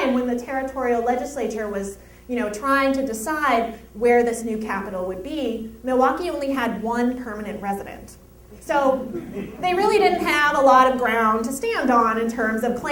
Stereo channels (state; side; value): identical; both; correlation 1.00